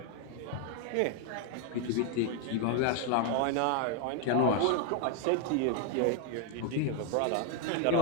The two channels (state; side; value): different; both; correlation 0.00